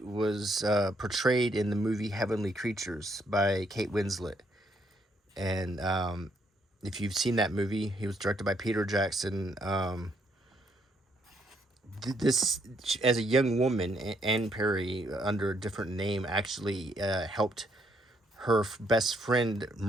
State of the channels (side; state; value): both; normal; correlation 0.72